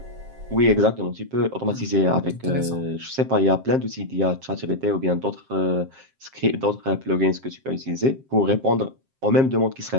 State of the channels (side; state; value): left; late; 7.5 ms